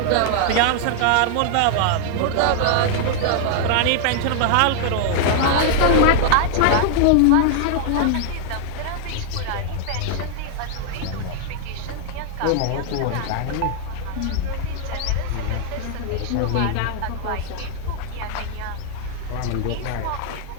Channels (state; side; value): different; both; correlation 0.00